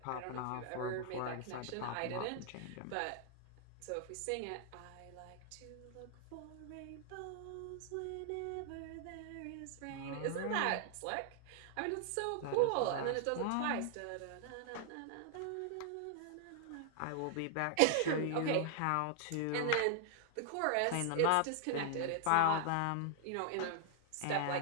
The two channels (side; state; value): both; different; correlation 0.00